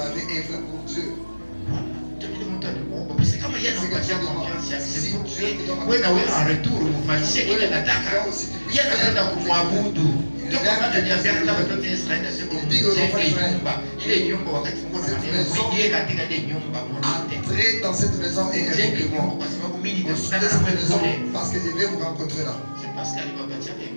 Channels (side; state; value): both; inverted; correlation -1.00